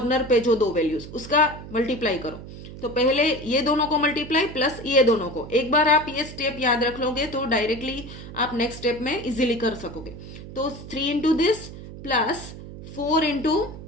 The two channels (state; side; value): noise; right; hum, 13 dB below the sound